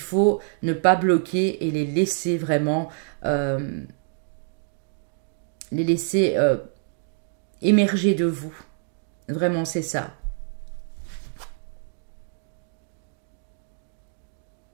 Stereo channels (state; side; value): silent; left; 61 dB below the other